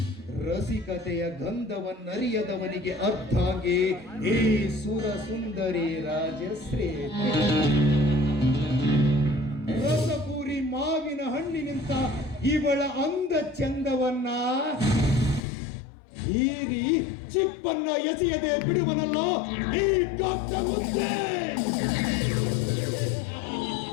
ರಸಿಕತೆಯ ಗಂಧವನ್ನರಿಯದವನಿಗೆ ಅರ್ಥಾಂಗಿ ಈ ಸುರ ಸುಂದರಿ ರಾಜಶ್ರೀ. ರಸಪೂರಿ ಮಾವಿನ ಹಣ್ಣಿನಿಂತ ಇವಳ ಅಂದ ಚಂದವನ್ನ ಹೀರಿ ಚಿಪ್ಪನ್ನ ಎಸೆಯದೆ ಬಿಡುವನಲ್ಲ ಈ ಕಪ್ಪ ಮುದ್ದೆ.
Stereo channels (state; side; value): drops out; right; at 15.4 s